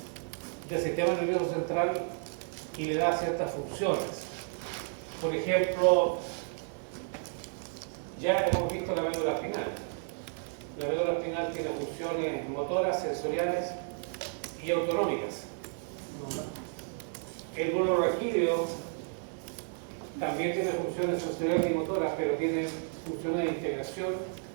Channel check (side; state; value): left; silent; 56 dB below the other